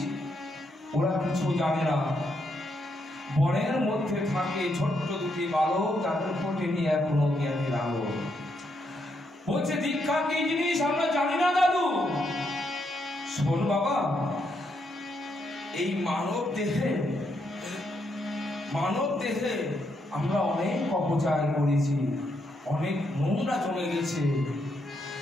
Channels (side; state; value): both; normal; correlation 0.78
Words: ওরা কিছু জানে না। বনের মধ্যে থাকে ছোট্ট দুটি বালক, তাদের ফোটেনি এখনো জ্ঞানের আলো। বলছে দীক্ষা কি জিনিস আমরা জানি না দাদু। শোন বাবা, এই মানব দেহে আমরা অনেক অপচয় করেছি, অনেক নোংরা জমে গেছে।